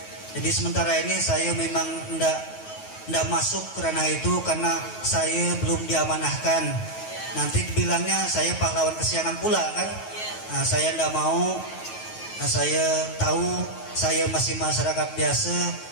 Jadi sementara ini saya memang tidak masuk ke ranah itu karena saya belum diamanahkan. Nanti dibilangnya saya pahlawan kesiangan pula kan. Nah, saya tidak mau. Nah, saya tahu saya masih masyarakat biasa,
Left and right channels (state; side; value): late; right; 9.3 ms